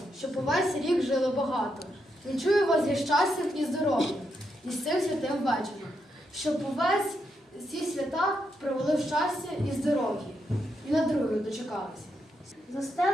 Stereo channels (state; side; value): normal; both; correlation 0.81